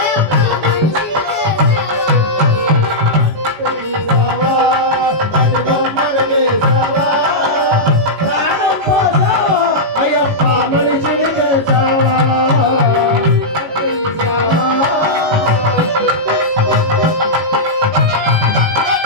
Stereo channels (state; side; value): late; left; 18 ms